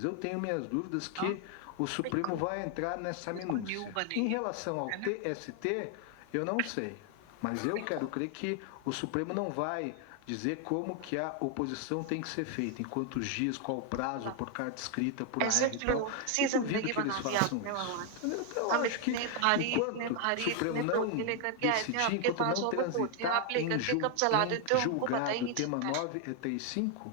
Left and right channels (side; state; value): both; different; correlation 0.01